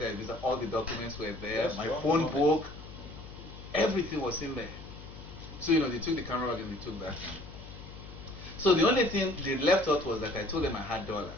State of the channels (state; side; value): noise; left; hum, 15 dB below the sound